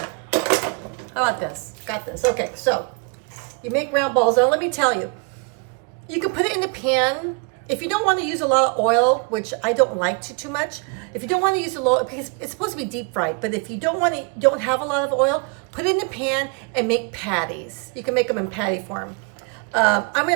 How about this? Got this. Okay, so you make round balls. Now, let me tell you. You can put it in the pan. If you don't want to use a lot of oil, which I don't like too much, if you don't want to use a lot, because it's supposed to be deep fried, but if you don't have a lot of oil, put it in the pan and make patties. You can make them in patty form. I'm going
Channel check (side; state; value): left; quieter; 33.0 dB